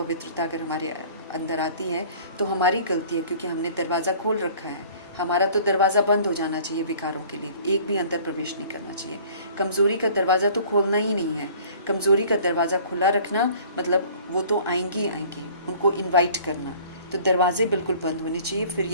अगर हमारे अंदर आती है तो हमारी गलती है, क्योंकि हमने दरवाज़ा खोल रखा है। हमारा तो दरवाज़ा बंद हो जाना चाहिए विकारों के लिए, एक भी अंदर प्रवेश नहीं करना चाहिए। कमज़ोरी का दरवाज़ा तो खोलना ही नहीं है। कमज़ोरी का दरवाज़ा खुला रखना मतलब वो तो आएंगी ही आएंगी, उनको इनवाइट करना। तो दरवाजे बिल्कुल बंद होने चाहिए, फिर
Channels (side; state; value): both; inverted; correlation -0.50